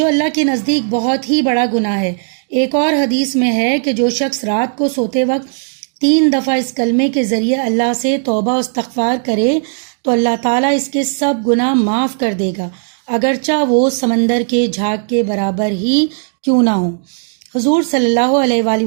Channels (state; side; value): silent; left; digital silence